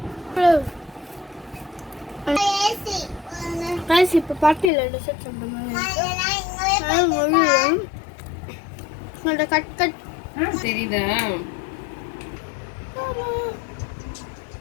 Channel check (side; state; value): right; drops out; at 4.7 s